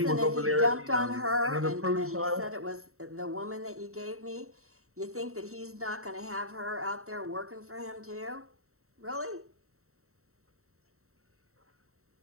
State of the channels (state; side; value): late; left; 0.63 ms